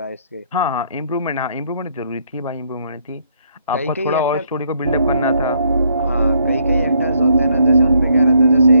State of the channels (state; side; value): inverted; both; correlation -0.70